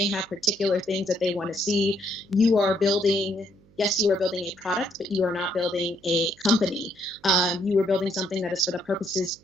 have particular things that they want to see, you are building yes, you are building a product, but you are not building a company. You are building something that is for the purposes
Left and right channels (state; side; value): noise; right; hum, 29 dB below the sound